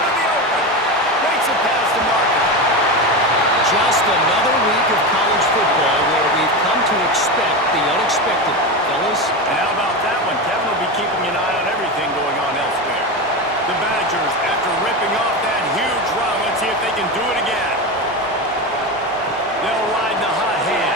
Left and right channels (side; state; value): both; normal; correlation 0.20